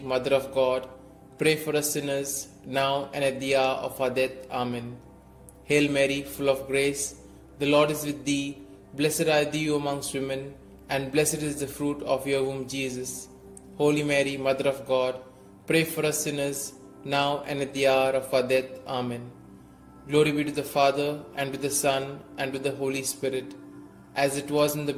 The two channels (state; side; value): identical; both; correlation 1.00